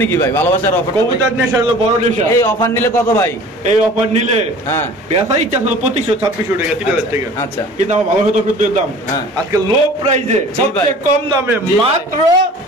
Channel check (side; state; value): both; normal; correlation 0.45